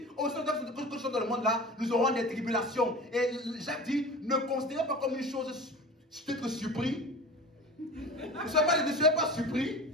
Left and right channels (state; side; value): normal; both; correlation 0.35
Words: au sein de dans le monde là, nous aurons des tribulations. Et Jacques dit, ne considérez pas comme une chose d'être surpris. Ne soyez pas surpris